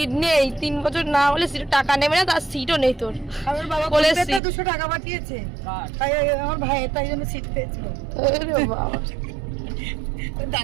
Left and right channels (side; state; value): left; drops out; at 4.4 s